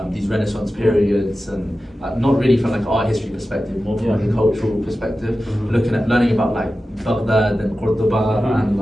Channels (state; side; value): normal; both; correlation 0.94